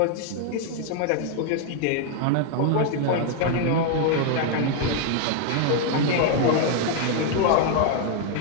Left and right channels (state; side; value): different; both; correlation 0.00